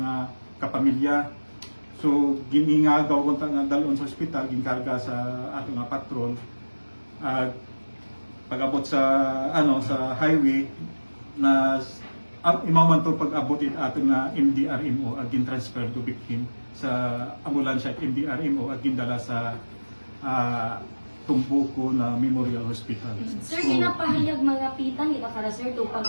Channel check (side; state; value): both; inverted; correlation -1.00